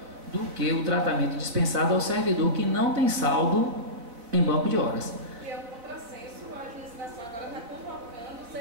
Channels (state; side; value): late; left; 4.1 ms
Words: do que o tratamento dispensado ao servidor que não tem saldo em banco de horas. E é um contrassenso, a administração agora está convocando os